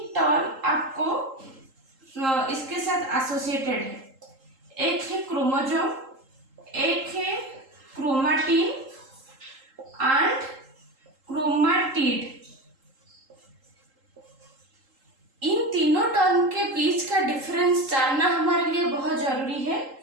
टर्म आपको इसके साथ एसोसिएटेड है। एक है क्रोमोसोम, एक है क्रोमाटिन एंड क्रोमाटिड। इन तीनों टर्म के बीच का डिफरेंस जानना हमारे लिए बहुत जरूरी है।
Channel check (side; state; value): left; late; 3.8 ms